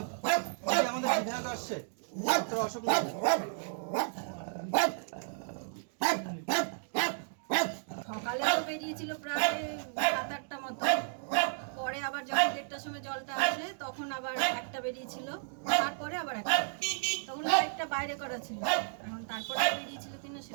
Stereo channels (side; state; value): left; silent; digital silence